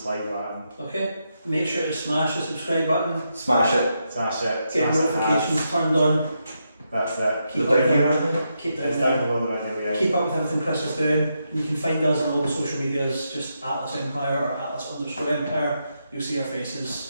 button. Okay. Make sure to smash the subscribe button. Smash it. Smash it. Get notifications turned on. That's it. Keep It's down below the video, yeah. Keep up with everything Chris is doing. You can find us on all the social medias, just Atlas Empire or Atlas_Empire. You'll see our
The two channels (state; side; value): inverted; both; correlation -0.83